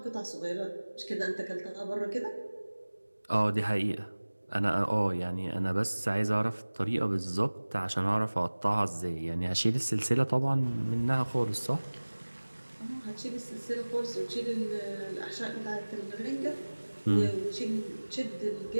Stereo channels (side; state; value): both; inverted; correlation -1.00